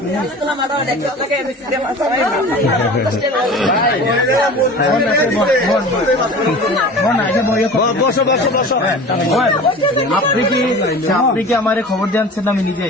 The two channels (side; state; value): both; normal; correlation 0.38